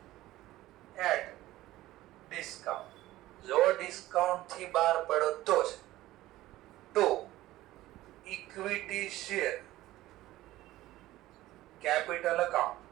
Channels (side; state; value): left; quieter; 16.2 dB